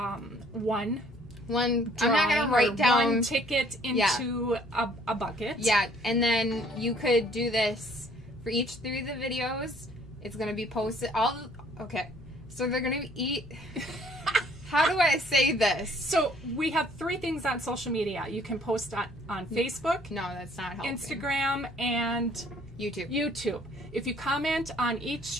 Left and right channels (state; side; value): normal; both; correlation 0.60